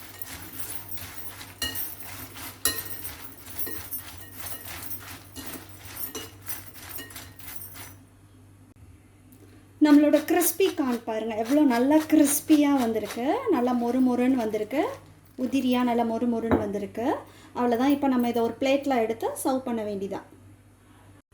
நம்மளோட கிறிஸ்பி கார்ன் பாருங்கள் எவ்வளோ நல்லா கிறிஸ்பியாக வந்திருக்கு. நல்லா மொறு மொறுன்னு வந்திருக்கு. உதிரியாக நல்லா மொறு மொறுன்னு வந்திருக்கு. அவ்வளோதான். இப்போ நம்ம இதை ஒரு பிளேட்டில் எடுத்து சர்வ் பண்ண வேண்டியதான்.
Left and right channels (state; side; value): identical; both; correlation 1.00